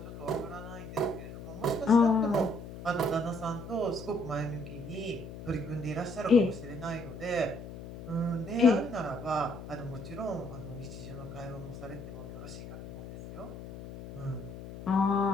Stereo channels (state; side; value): noise; left; hum, 12 dB below the sound